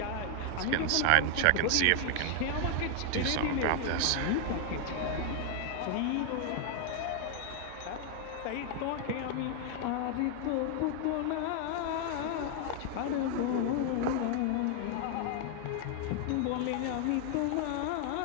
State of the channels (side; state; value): both; different; correlation 0.00